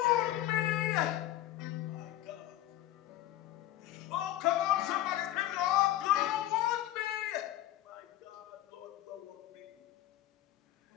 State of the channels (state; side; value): quieter; right; 13.9 dB